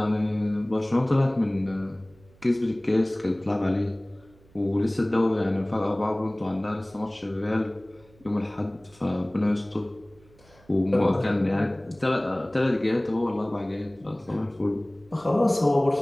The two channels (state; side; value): noise; right; hum, 28 dB below the sound